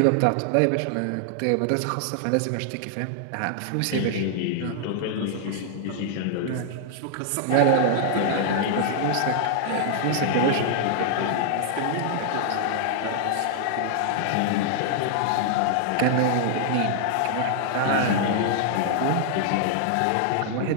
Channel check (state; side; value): different; both; correlation 0.00